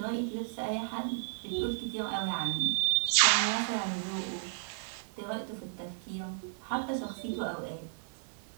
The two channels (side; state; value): left; silent; digital silence